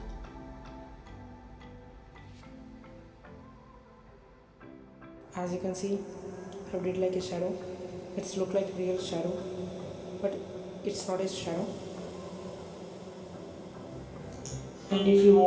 As you can see, I did like a shadow. It's look like real shadow, but it's not a shadow. And if you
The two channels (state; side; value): identical; both; correlation 1.00